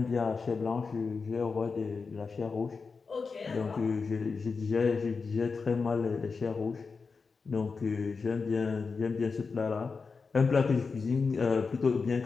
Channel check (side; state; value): right; quieter; 4.8 dB